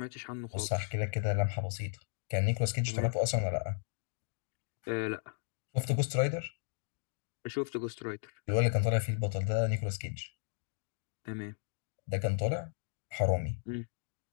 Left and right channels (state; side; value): silent; right; digital silence